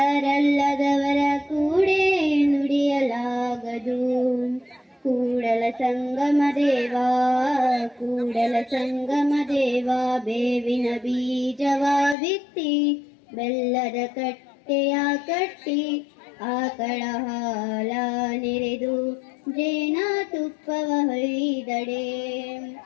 ಕೂಡೆ ನುಡಿಯಲಾಗದು. ಕೂಡಲ ಸಂಗಮ ದೇವಾ, ಕೂಡಲ ಸಂಗಮ ದೇವಾ, ಬೇವಿನ ಬೀಜವ ಬಿತ್ತಿ ಬೆಲ್ಲದ ಕಟ್ಟೆಯ ಕಟ್ಟಿ ಆಕಳ ಹಾಲ ನೆರೆದು ಜೇನ ತುಪ್ಪವ ಹೊಯ್ದಡೆ.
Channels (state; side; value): drops out; right; at 12.2 s